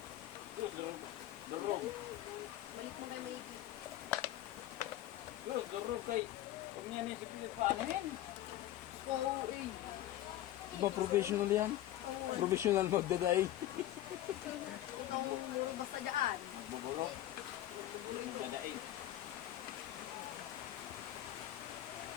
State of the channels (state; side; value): quieter; right; 13.7 dB